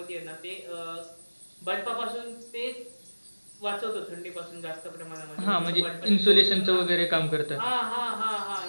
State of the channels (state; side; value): inverted; both; correlation -1.00